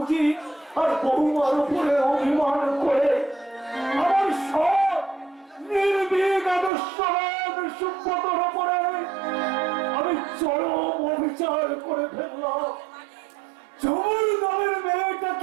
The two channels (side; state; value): left; drops out; at 6.7 s